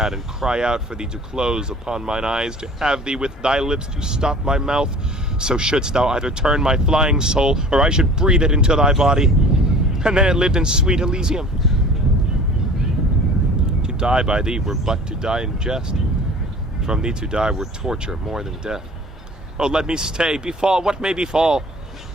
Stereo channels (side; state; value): both; normal; correlation 0.45